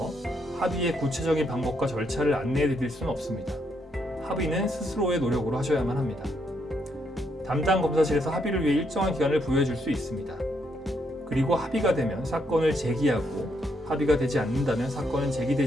합의의 구체적인 방법과 절차를 안내해 드릴 수는 없습니다. 합의는 스스로의 노력으로 하셔야만 합니다. 담당 검사실에서 합의를 위해 일정한 기간을 부여해 줄 수 있습니다. 그리고 합의가 되면 사건을 제기하고 합의가 되지 않는다면 사건은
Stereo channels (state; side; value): normal; both; correlation 0.76